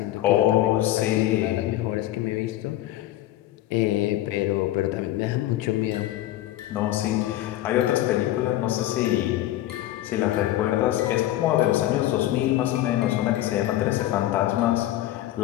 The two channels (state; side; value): quieter; right; 14.5 dB